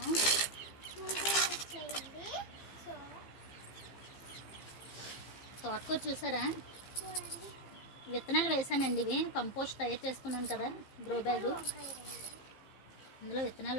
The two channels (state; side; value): late; right; 15 ms